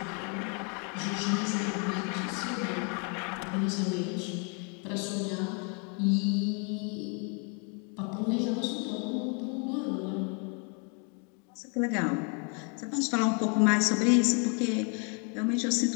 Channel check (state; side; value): quieter; right; 37.9 dB